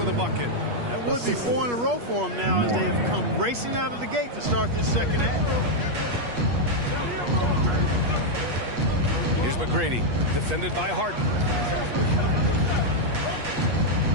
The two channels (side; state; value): left; late; 8.4 ms